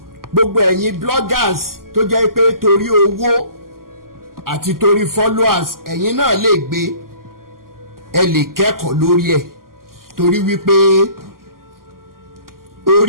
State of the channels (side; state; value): left; late; 0.92 ms